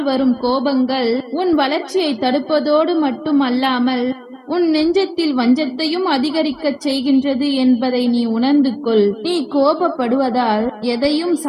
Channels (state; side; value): identical; both; correlation 1.00